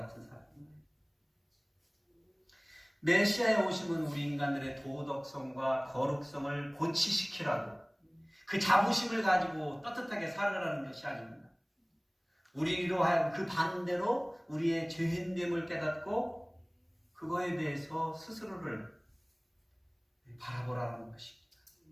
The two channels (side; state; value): both; identical; correlation 1.00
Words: 사람. 메시아의 오심은 우리 인간들의 도덕성과 거룩성을 고치시키라고 그 자부심을 가지고 떳떳하게 살아가라는 것이 아닙니다. 우리로 하여금 그 반대로 우리의 죄인됨을 깨닫고 그거에 대해서 스스로를 바라보라는 것입니다.